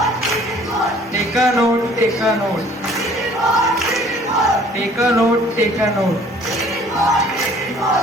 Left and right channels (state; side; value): normal; both; correlation 0.54